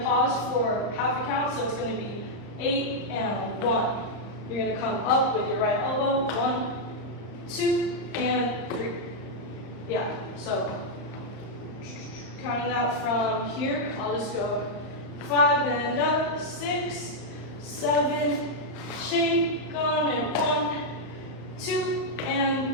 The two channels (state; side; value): late; right; 34 ms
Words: pause for half a count, so it's going to be 8 and 1. You're going to come up with your right elbow. 1, 2, and 3. Yeah, so counting that from here, I'll just go 5 and up, 6, 7, shake on it, 1, 2,